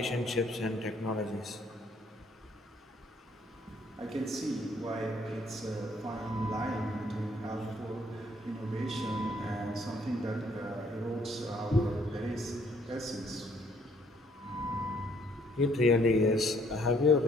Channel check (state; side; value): normal; both; correlation 0.64